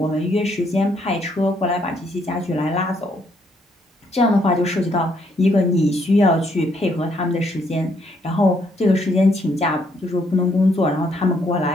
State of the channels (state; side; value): normal; both; correlation 0.71